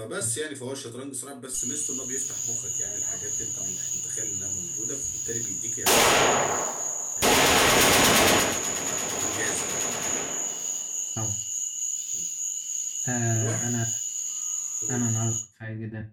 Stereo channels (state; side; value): identical; both; correlation 1.00